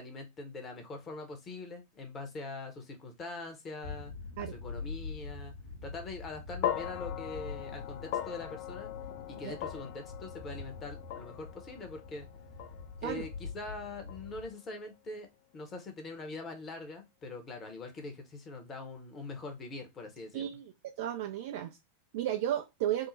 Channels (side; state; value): both; normal; correlation -0.05